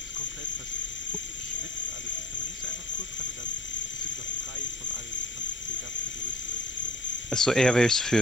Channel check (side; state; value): both; normal; correlation 0.48